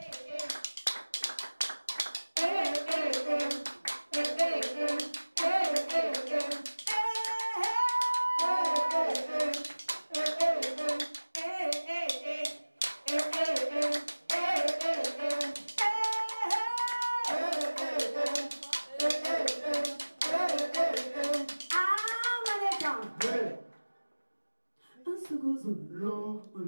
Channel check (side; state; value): both; inverted; correlation -1.00